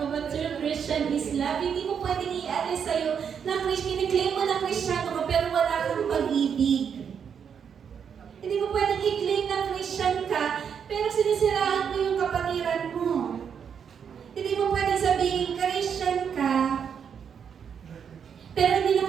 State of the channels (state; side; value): quieter; left; 7.4 dB